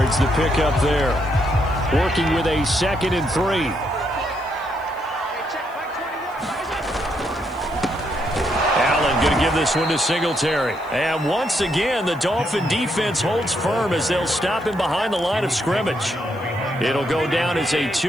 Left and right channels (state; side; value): noise; left; hiss, 28 dB below the sound